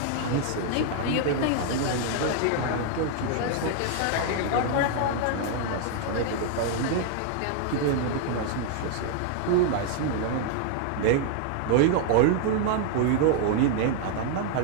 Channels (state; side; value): different; both; correlation 0.00